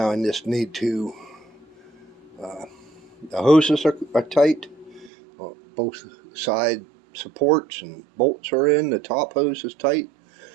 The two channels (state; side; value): drops out; left; at 5.1 s